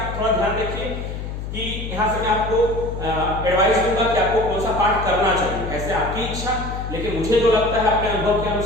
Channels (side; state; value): left; noise; hum, 6 dB below the sound